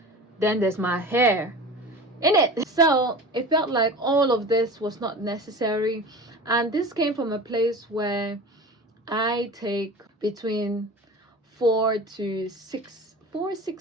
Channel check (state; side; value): normal; both; correlation 0.35